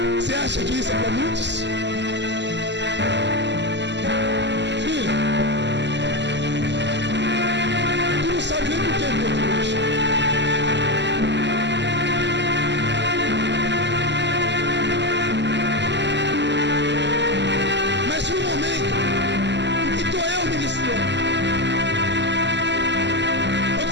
você acha que isso é para muitos? Filho, tu não sabe nem por que eu estou aqui hoje. Mas no momento em que estou eu ministrando, eu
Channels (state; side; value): late; left; 0.51 ms